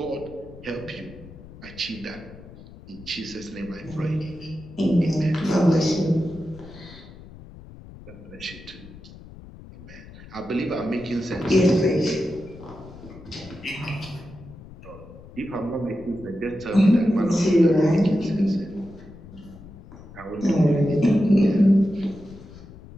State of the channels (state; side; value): noise; left; rumble, 18 dB below the sound